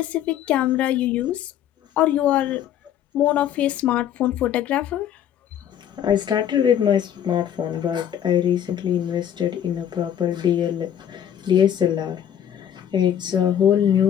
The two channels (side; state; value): right; quieter; 9.9 dB